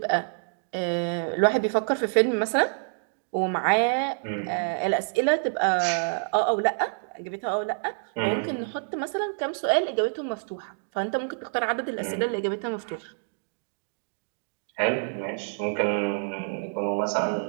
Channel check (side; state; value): left; silent; digital silence